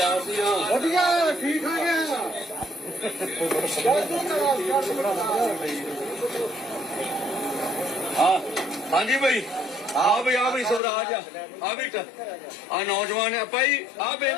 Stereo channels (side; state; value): right; drops out; at 10.8 s